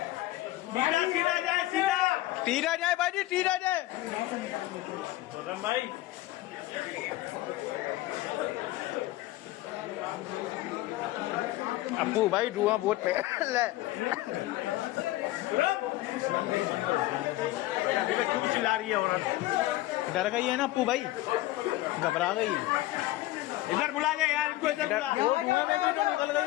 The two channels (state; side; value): quieter; right; 17.0 dB